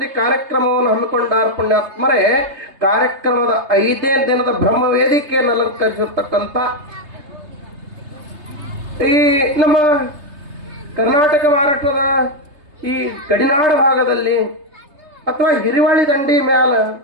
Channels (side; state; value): left; late; 3.3 ms